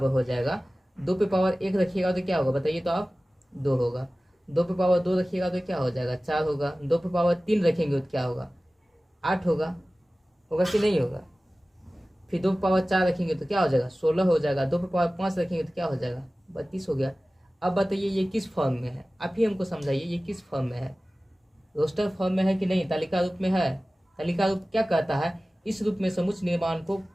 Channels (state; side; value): normal; both; correlation 0.97